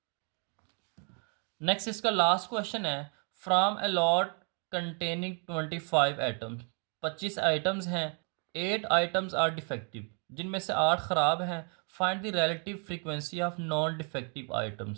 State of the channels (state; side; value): quieter; left; 39.1 dB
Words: नेक्स्ट इसका लास्ट क्वेश्चन है, from a lot containing 25 items. 25 items हैं, 8 आइटम्स आर डिफेक्टिव, जिनमें से 8 ख़राब हैं। Find the relative frequency of non defective